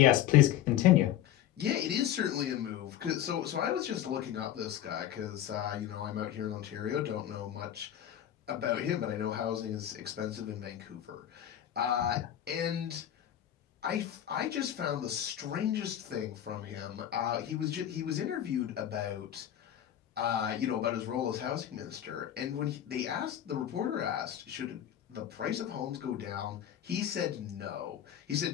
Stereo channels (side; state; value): right; quieter; 11.2 dB